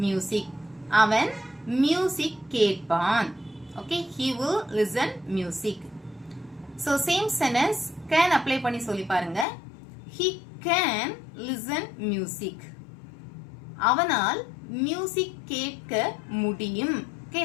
music. அவன் music கேட்பான். Okay, he will listen music. So same sentence can apply பண்ணி சொல்லி பாருங்க. He can listen music. அவனால் music கேட்க முடியும். Okay,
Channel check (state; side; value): drops out; right; at 9.5 s